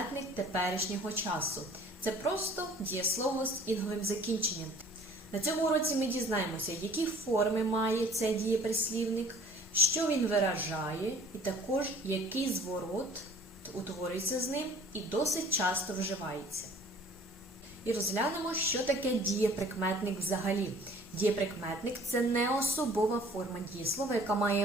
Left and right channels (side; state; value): both; normal; correlation 0.51